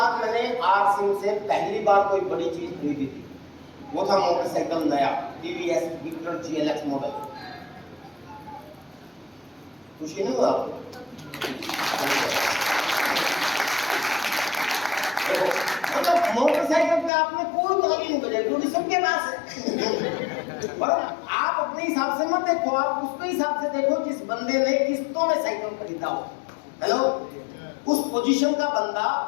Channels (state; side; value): drops out; right; at 17.1 s